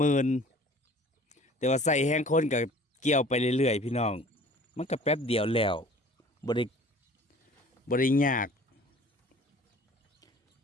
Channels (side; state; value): both; normal; correlation 0.48